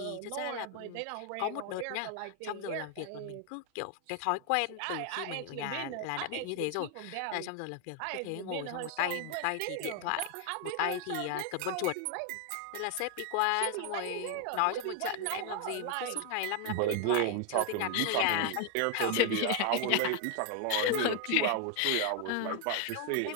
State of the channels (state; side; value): different; both; correlation 0.00